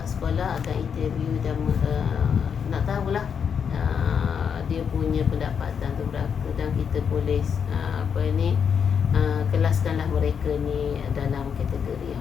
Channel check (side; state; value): right; quieter; 7.0 dB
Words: sekolah akan interview dan nak tahulah dia punya pendapatan tu berapa, dan kita boleh kelaskanlah mereka ni dalam kategori